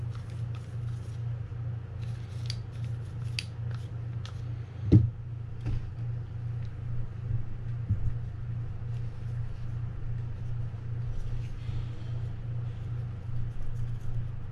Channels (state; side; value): identical; both; correlation 1.00